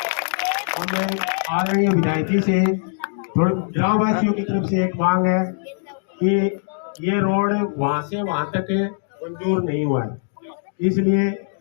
और मैं आदरणीय विधायक जी से ग्रामवासियों की तरफ से एक मांग है कि ये रोड वहां से वहां तक मंजूर नहीं हुआ है, इसलिए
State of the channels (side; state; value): right; silent; digital silence